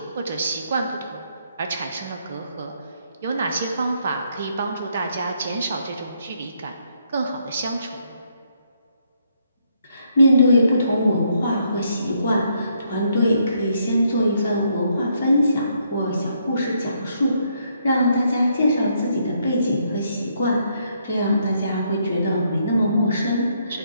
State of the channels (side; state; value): both; inverted; correlation -0.73